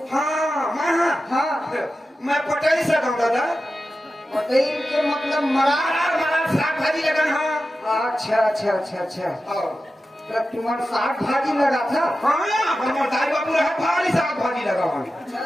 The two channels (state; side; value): normal; both; correlation 0.93